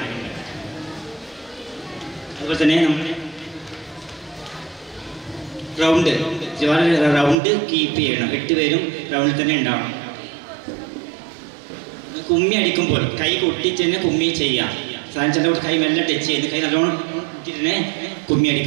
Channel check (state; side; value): drops out; left; at 7.4 s